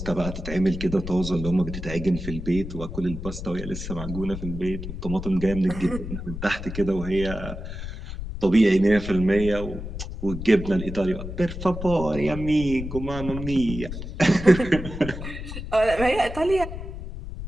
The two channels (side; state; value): left; noise; rumble, 8 dB below the sound